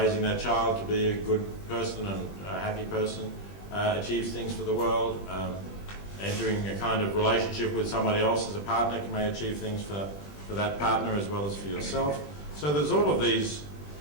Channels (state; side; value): late; right; 20 ms